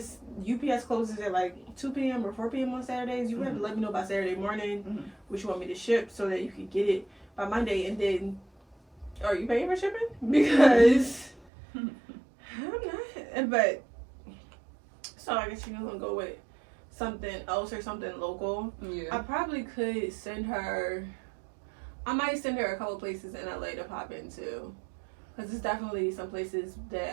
UPS closes at like 2 p.m. or 4 p.m. on Saturdays. You have to let me know by Saturday morning what you want me to ship so that you can get it by Monday. And then, are you paying for shipping? Because I'm not. But, so I guess you're going to go with something else or something local. Yeah. I probably could send her... I might send her a couple places in LA to pop into. Because there's definitely some places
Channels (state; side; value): drops out; left; at 11.5 s